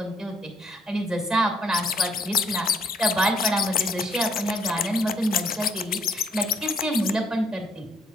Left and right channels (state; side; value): normal; both; correlation 0.68